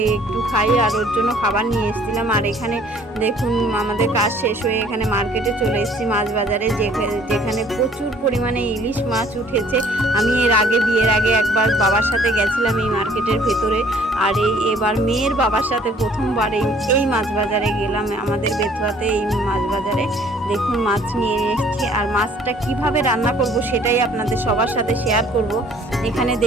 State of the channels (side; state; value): both; normal; correlation 0.57